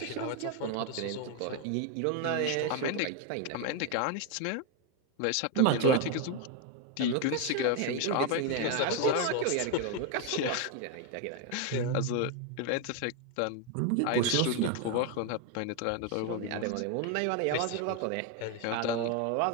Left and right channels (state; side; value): different; both; correlation 0.01